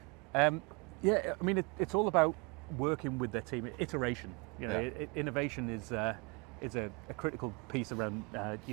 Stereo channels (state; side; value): quieter; left; 30.6 dB